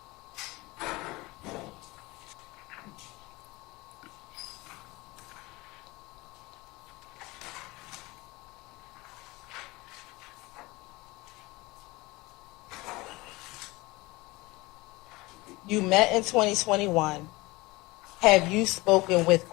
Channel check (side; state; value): right; quieter; 21.9 dB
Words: You met in 2021. Have you spoken with